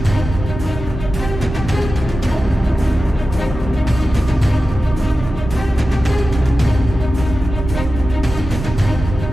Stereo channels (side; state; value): both; normal; correlation 0.93